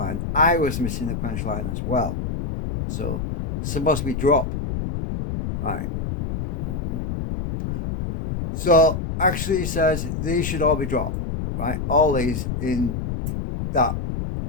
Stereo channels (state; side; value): noise; left; rumble, 4 dB below the sound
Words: I was missing a quench line as well. So it's supposed to be drop. Right. So actually he says these should all be dropped. Right. All these in that.